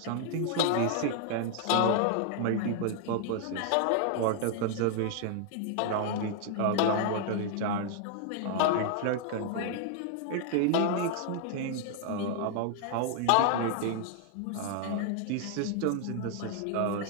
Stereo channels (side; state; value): both; different; correlation 0.00